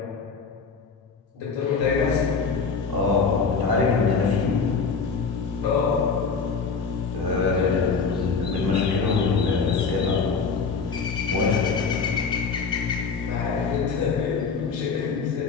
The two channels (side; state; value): right; quieter; 5.2 dB